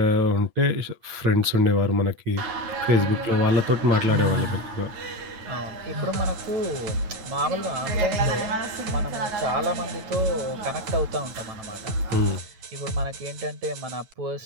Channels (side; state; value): left; late; 9.0 ms